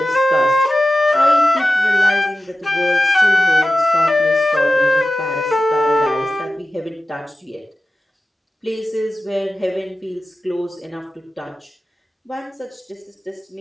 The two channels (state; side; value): normal; both; correlation 0.94